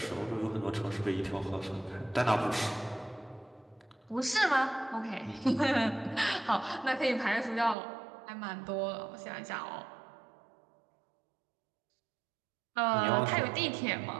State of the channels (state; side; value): drops out; left; at 7.8 s